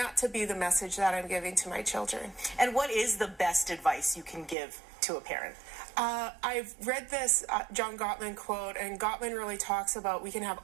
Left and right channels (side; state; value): left; drops out; at 4.5 s